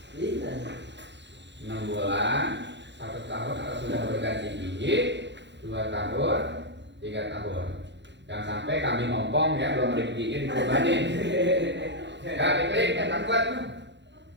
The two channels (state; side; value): late; left; 0.52 ms